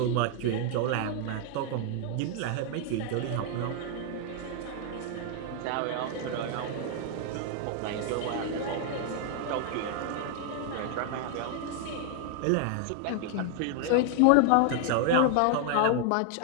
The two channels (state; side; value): different; both; correlation 0.00